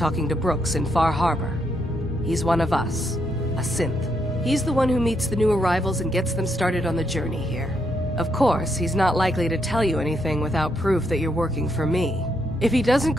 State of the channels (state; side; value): normal; both; correlation 0.77